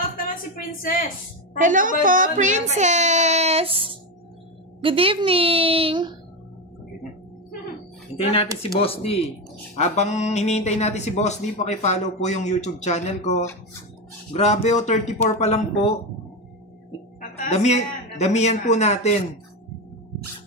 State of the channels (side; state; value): both; normal; correlation 0.14